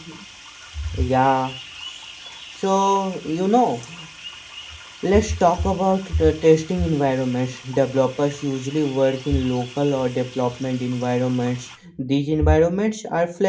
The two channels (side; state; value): both; identical; correlation 1.00